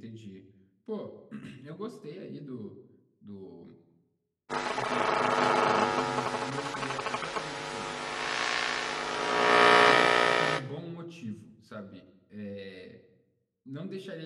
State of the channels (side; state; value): both; identical; correlation 1.00